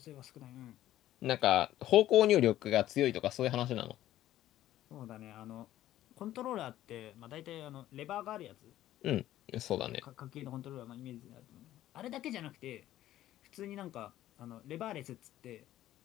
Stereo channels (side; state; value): right; quieter; 13.6 dB